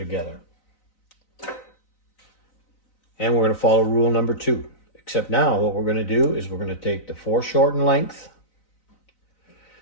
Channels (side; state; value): right; late; 3.9 ms